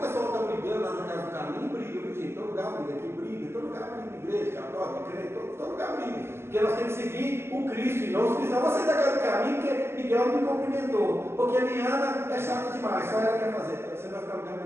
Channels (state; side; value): late; left; 0.12 ms